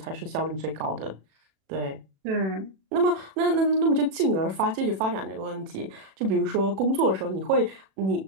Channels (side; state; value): left; late; 37 ms